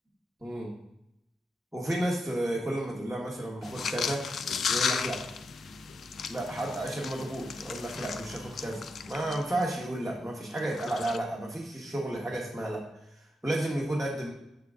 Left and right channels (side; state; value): both; normal; correlation 0.85